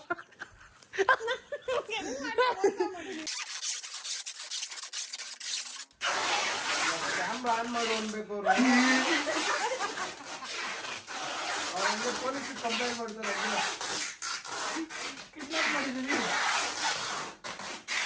ಕ್ಯಾಮ್ರಾ ಆನ್ ಮಾಡು ಅನ್ಬೇಕು. ಪೊಲೀಸ್ ಕಂಪ್ಲೇಂಟ್ ಮಾಡ್ತಾರೆ. ಕಿಡ್ನಾಪ್ ಮಾಡಿದೀನಿ.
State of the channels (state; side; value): identical; both; correlation 1.00